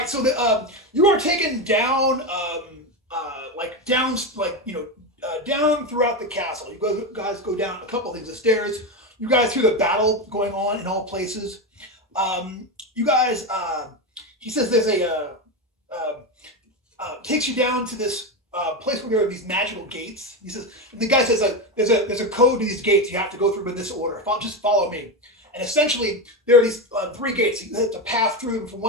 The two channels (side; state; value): both; normal; correlation 0.14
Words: you are taken down down throughout the castle. You guys go down a couple things, the stairs. You guys hear the battle going on in all places. You guys, he says there's takes you down to this place where there are these magical gates. He says, and the guy says there's a code to these gates. You have to go through in this order. Just follow me. And essentially, there are these 3 gates. You have to pass through them from